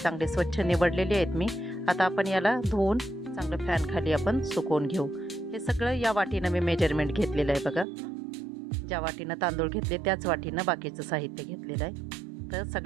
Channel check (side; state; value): left; drops out; at 7.9 s